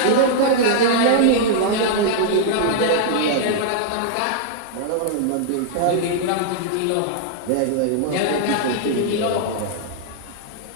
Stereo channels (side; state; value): both; different; correlation -0.01